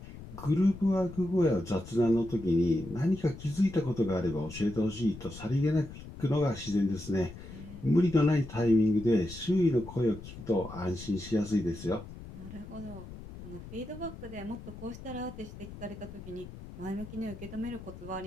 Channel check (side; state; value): left; noise; rumble, 14 dB below the sound